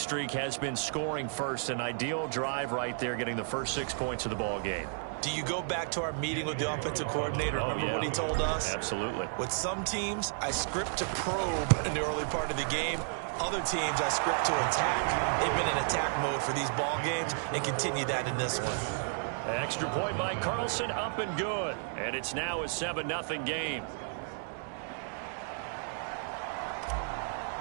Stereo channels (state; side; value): silent; left; digital silence